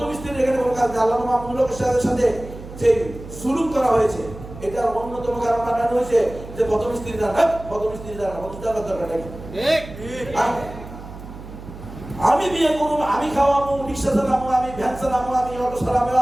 স্ত্রীর এখানে কোনো কাজ নেই। আল্লাহ মাহমুদুল সাথে যে সুলুক করা হয়েছে, এটার অন্যতম কারণ বানানো হয়েছে যে প্রথম স্ত্রী দ্বারা, প্রথম স্ত্রী দ্বারা প্রথম দ্বারা দরকার নাকি? আমি বিয়ে করবো, আমি খাওয়াবো, রিক্সা চালাবো, আমি ভ্যান চালাবো, আমি অটো চালাবো,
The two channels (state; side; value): noise; right; hum, 14 dB below the sound